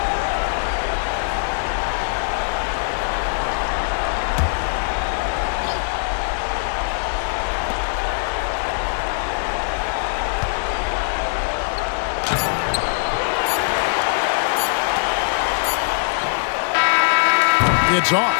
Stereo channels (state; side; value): silent; right; digital silence